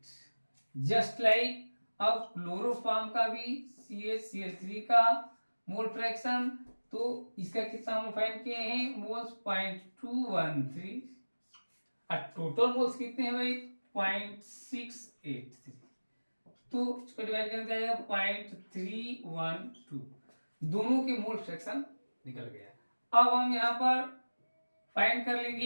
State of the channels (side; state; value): both; inverted; correlation -1.00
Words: जस्ट लाइक अब क्लोरोफॉर्म का भी CHCl3 का मोल फ्रैक्शन, तो इसका कितना हम फाइंड किए हैं मोल्स 0.213 और टोटल मोल्स कितने हैं भाई 0.683, तो इसको डिवाइड करके आ जाएगा 0.312, दोनों के मोल फ्रैक्शन निकल गया। अब हम यहाँ पर फाइंड कर